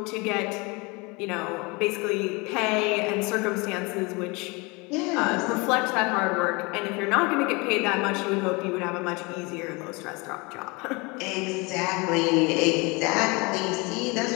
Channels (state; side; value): quieter; right; 26.9 dB